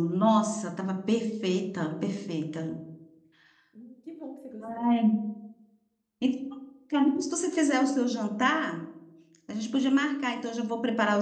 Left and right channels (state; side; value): identical; both; correlation 1.00